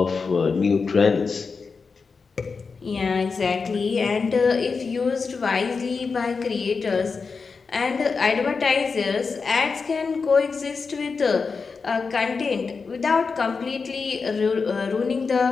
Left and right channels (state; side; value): quieter; right; 4.9 dB